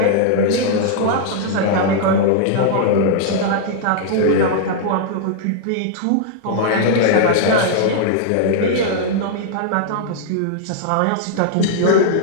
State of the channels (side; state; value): both; different; correlation -0.01